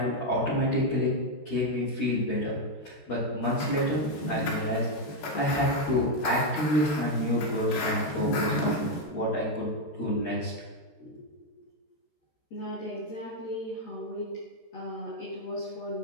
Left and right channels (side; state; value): right; late; 13 ms